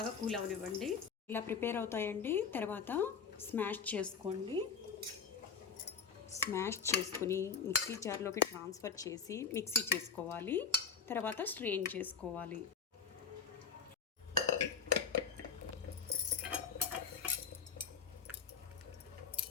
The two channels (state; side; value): quieter; right; 6.3 dB